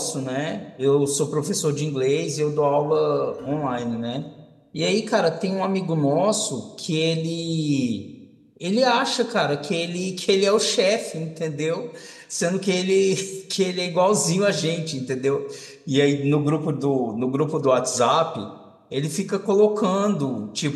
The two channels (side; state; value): both; identical; correlation 1.00